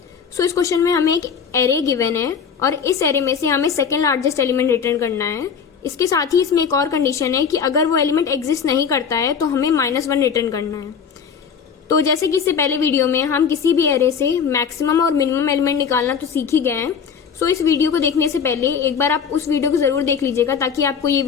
सो इस क्वेश्चन में हमें एक एरे गिवन है और इस एरे में से हमें सेकंड लार्जेस्ट एलिमेंट रिटर्न करना है। इसके साथ ही इसमें एक और कंडीशन है कि अगर वो एलिमेंट एग्जिस्ट नहीं करता है तो हमें -1 रिटर्न करना है। तो जैसे कि इससे पहले वीडियो में हम किसी भी एरे से मैक्सिमम और मिनिमम एलिमेंट निकालना तो सीख ही गए हैं। सो इस वीडियो को देखने से पहले एक बार आप उस वीडियो को जरूर देख लीजिएगा ताकि आपको ये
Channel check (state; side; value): quieter; right; 6.7 dB